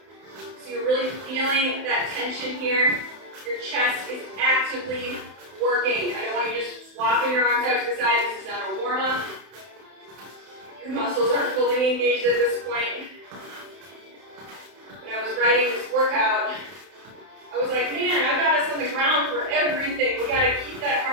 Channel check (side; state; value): left; late; 31 ms